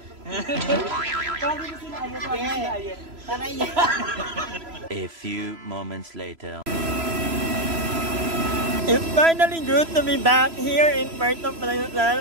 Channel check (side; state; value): left; late; 3.0 ms